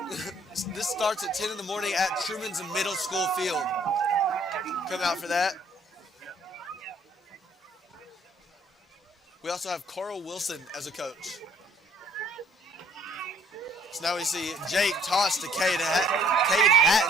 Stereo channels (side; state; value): both; normal; correlation 0.61